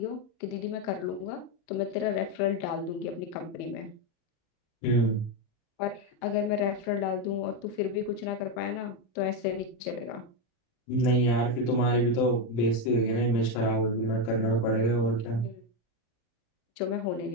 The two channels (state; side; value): late; right; 39 ms